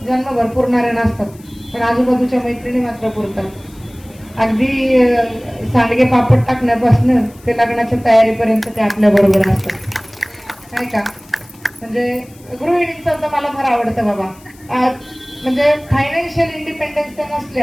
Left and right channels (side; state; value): left; noise; hiss, 26 dB below the sound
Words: जन्मभर पुरणाऱ्या नसतात, पण आजूबाजूच्या मैत्रिणी मात्र पुरतात. अगदी सांडगे पापड टाकण्यापासून ते लग्नाच्या तयारीपर्यंत ते आपल्या बरोबर असतात, नाही का. म्हणजे गृहिणींचं तर मला फार आवडतं बाबा. म्हणजे फायनान्शियल इंडिपेंडन्स त्या